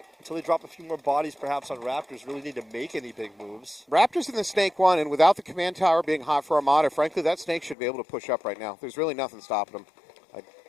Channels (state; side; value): drops out; right; at 7.8 s